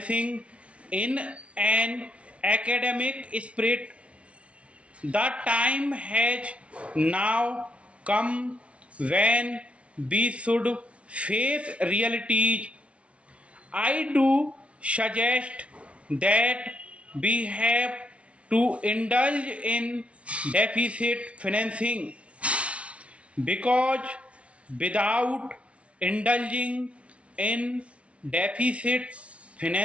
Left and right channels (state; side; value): late; left; 0.062 ms